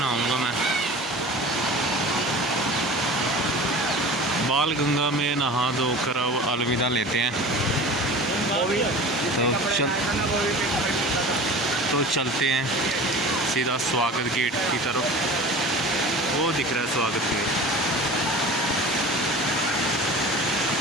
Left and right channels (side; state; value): both; normal; correlation 0.38